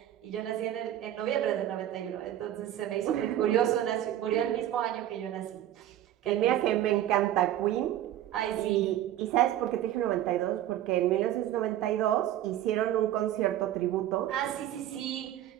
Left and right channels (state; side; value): quieter; left; 12.4 dB